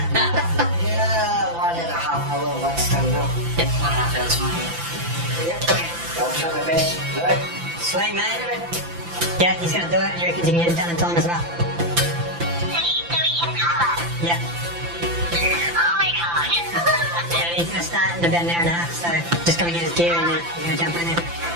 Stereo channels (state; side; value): late; left; 5.9 ms